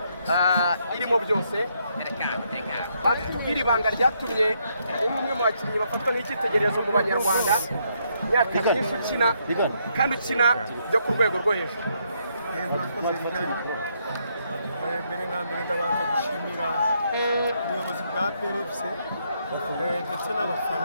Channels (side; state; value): both; inverted; correlation -0.75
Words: irimo byose. Tubwire ibanga ryatumye uri umwe mu bakinnyi bafatwa nk'icyitegererezo mu banyarwanda, imyaka myinshi ukina kandi ukina byo ku rwego rwo hejuru. Mbere na mbere ndabanza gushimira ubuyobozi bwa PRFC ndetse